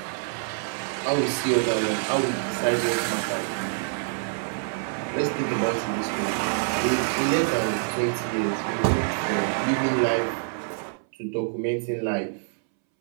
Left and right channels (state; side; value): silent; left; 61 dB below the other